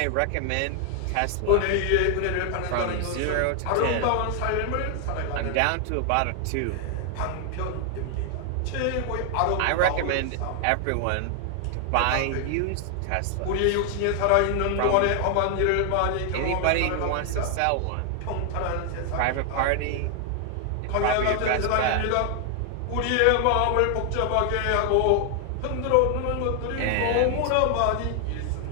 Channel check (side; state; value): both; different; correlation 0.00